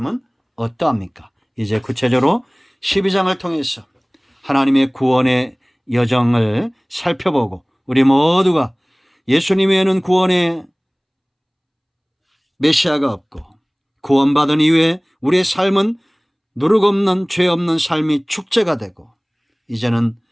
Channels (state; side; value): identical; both; correlation 1.00